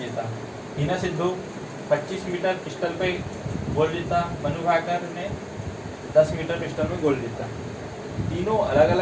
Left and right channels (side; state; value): both; identical; correlation 1.00